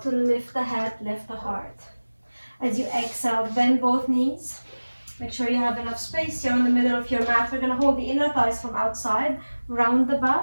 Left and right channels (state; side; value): inverted; both; correlation -1.00